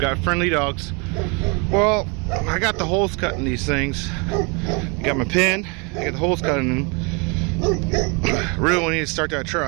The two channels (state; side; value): quieter; left; 31.7 dB